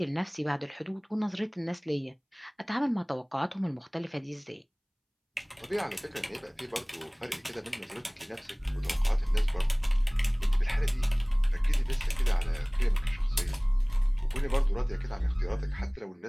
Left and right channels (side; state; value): both; identical; correlation 1.00